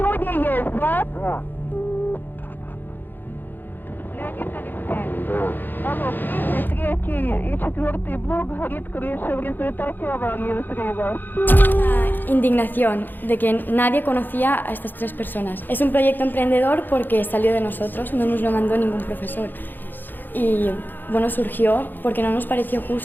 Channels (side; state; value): right; late; 0.091 ms